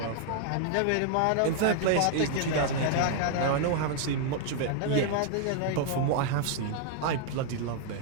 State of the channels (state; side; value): different; both; correlation 0.00